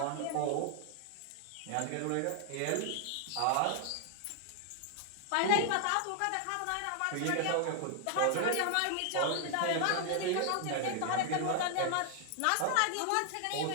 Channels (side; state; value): both; different; correlation 0.00